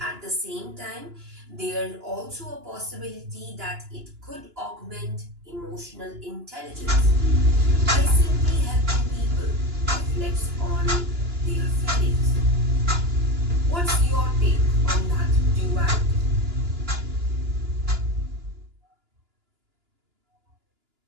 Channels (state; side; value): late; left; 2.9 ms